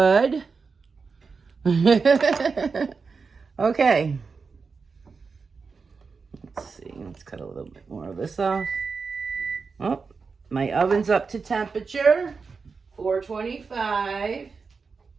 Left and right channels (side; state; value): left; quieter; 4.9 dB